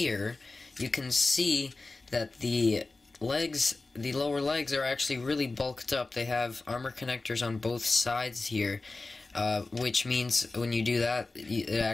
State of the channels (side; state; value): right; quieter; 3.4 dB